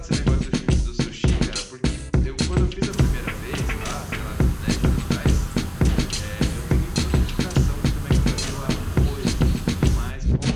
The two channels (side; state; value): both; identical; correlation 1.00